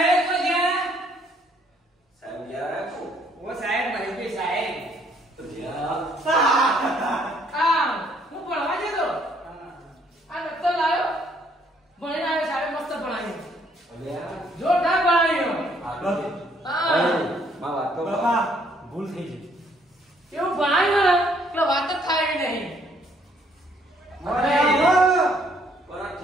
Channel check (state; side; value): normal; both; correlation 0.66